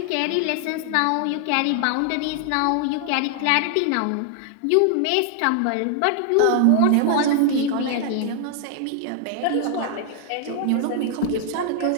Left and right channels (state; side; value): different; both; correlation 0.00